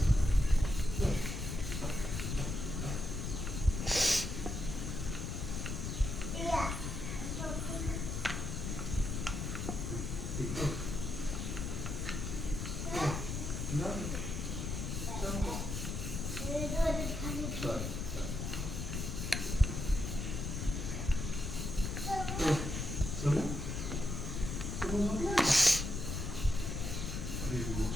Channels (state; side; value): noise; left; rumble, 3 dB below the sound